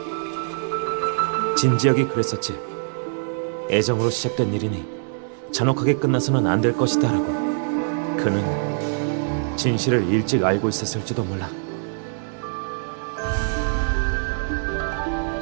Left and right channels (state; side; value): silent; left; 63 dB below the other